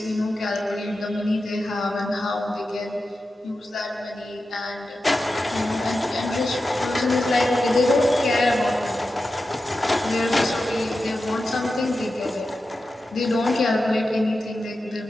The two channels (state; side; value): normal; both; correlation 0.91